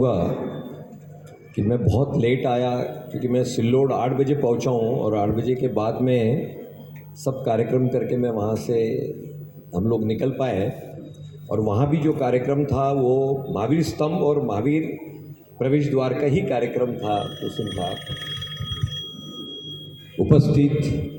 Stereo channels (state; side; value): identical; both; correlation 1.00